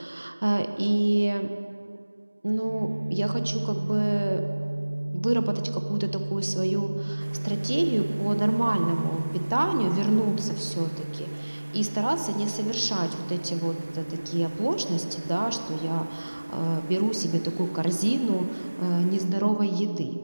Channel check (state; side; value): inverted; both; correlation -1.00